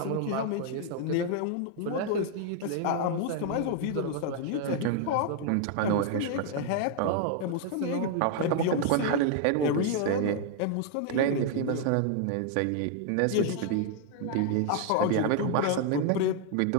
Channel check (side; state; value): both; different; correlation 0.00